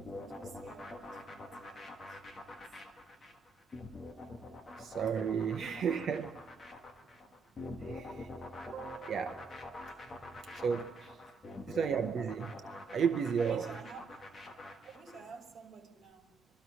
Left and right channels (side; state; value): left; quieter; 5.2 dB